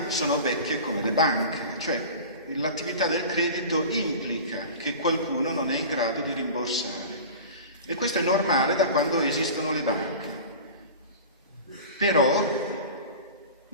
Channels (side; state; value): both; inverted; correlation -0.35